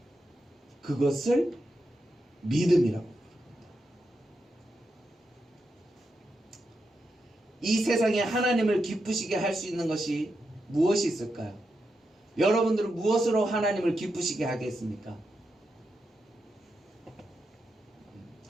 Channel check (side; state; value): both; normal; correlation 0.86